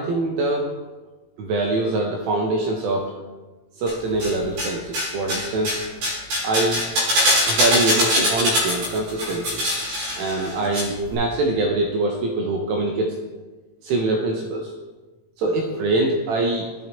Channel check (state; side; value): late; left; 18 ms